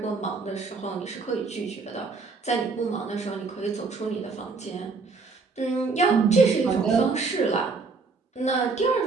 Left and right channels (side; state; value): left; quieter; 4.4 dB